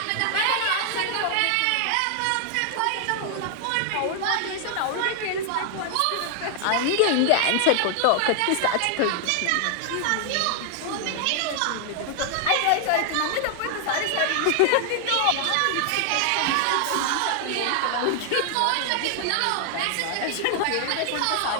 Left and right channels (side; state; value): both; different; correlation 0.00